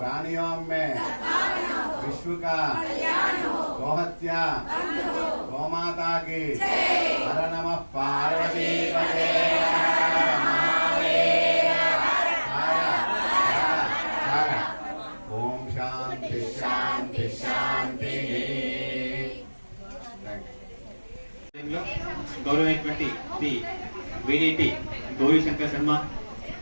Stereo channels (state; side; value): inverted; both; correlation -1.00